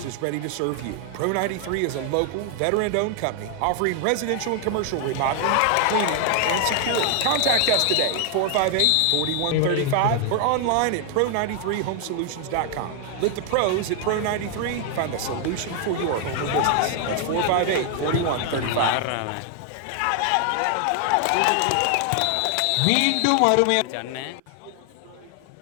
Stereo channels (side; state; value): both; different; correlation 0.00